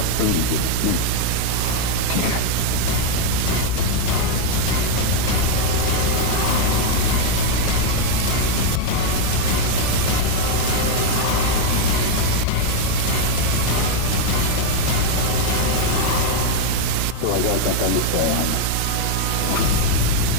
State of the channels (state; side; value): different; both; correlation 0.01